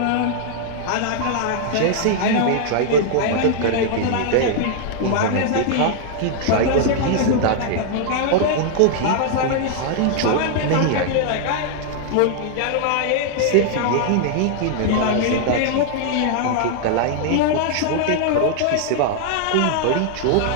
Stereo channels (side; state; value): both; different; correlation 0.00